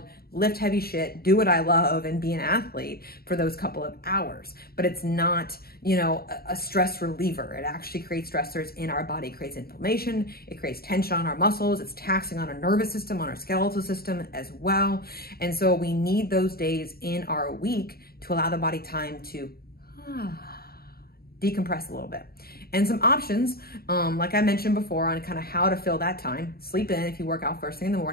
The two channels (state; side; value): late; right; 0.45 ms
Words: lift heavy shit, do what I love, and be an athlete for those couple of hours. But it's not, you know, a stress reliever. It actually creates stressors in our body. It creates inflammation. It creates tension on our muscles. It's taxing on our nervous system, on our skeletal system as well. And so we need those days in our week to allow the body time to decompress a little bit. And some options, like I mentioned before, on kind of how to fill that time. Sleep in if you work out first thing in the